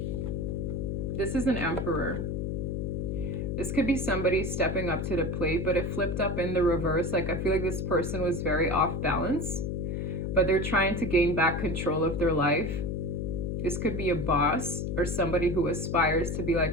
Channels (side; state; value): left; noise; hum, 1 dB below the sound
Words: This is an Emperor. This could be somebody stepping up to the plate, but it flipped up in the reverse. Like I feel like this person was very off balance, but they're trying to gain back control of their life. This could be a boss or somebody who aspires to be